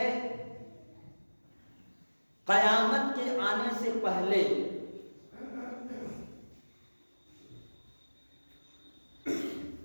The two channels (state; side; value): inverted; both; correlation -1.00